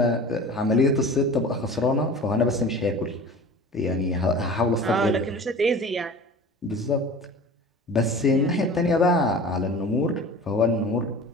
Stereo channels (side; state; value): both; normal; correlation 0.39